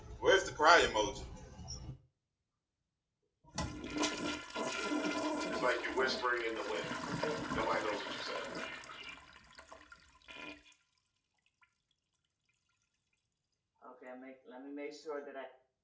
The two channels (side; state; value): both; identical; correlation 1.00